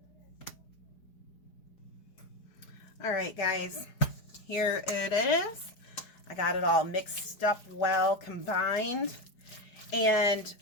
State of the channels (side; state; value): right; late; 4.7 ms